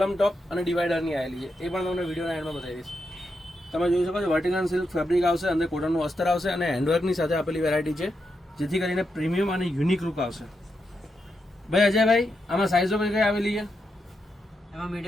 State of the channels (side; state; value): both; normal; correlation 0.84